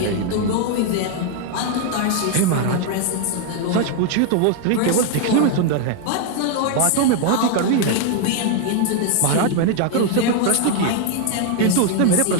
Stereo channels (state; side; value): different; both; correlation 0.00